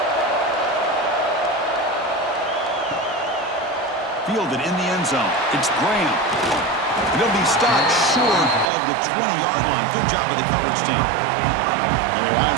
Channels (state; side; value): drops out; left; at 8.7 s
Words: Fielded in the end zone. It's Graham. It'll be stopped short of the 20-yard line. Good job by the coverage team. And the Ohio